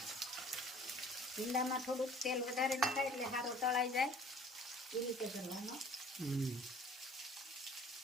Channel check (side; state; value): both; normal; correlation 0.51